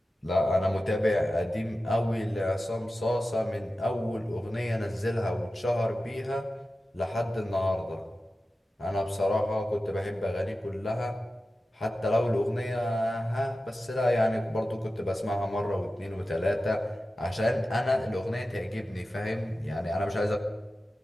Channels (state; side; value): normal; both; correlation 0.94